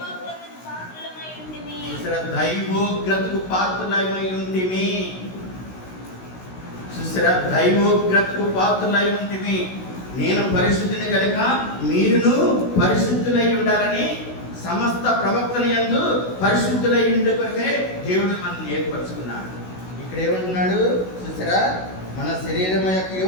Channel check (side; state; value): right; late; 16 ms